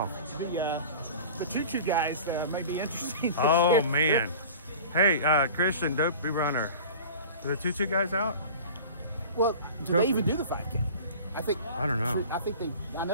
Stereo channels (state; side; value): inverted; both; correlation -0.39